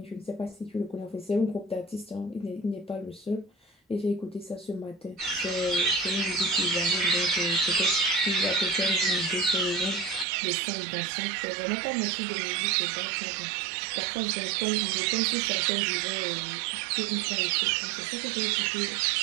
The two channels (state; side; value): drops out; left; at 10.2 s